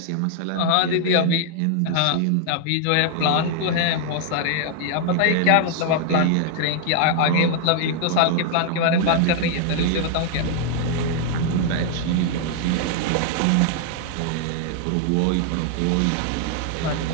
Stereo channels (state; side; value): different; both; correlation 0.00